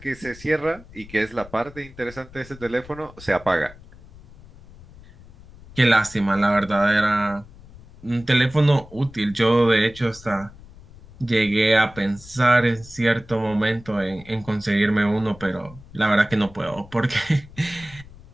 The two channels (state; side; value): noise; left; rumble, 20 dB below the sound